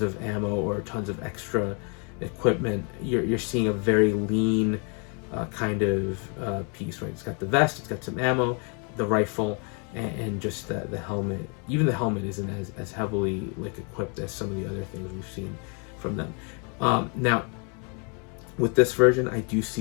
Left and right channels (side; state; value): right; quieter; 36.5 dB